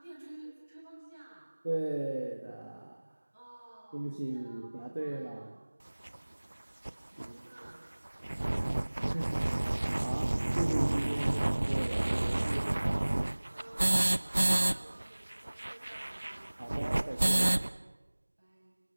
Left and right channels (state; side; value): inverted; both; correlation -1.00